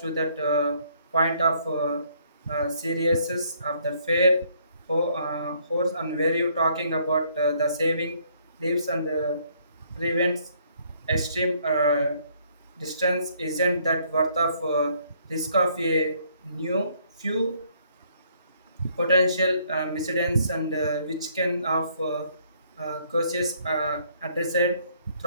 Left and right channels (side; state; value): both; inverted; correlation -0.66